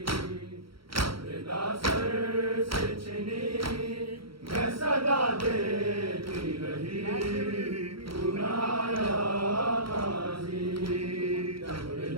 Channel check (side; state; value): left; late; 0.74 ms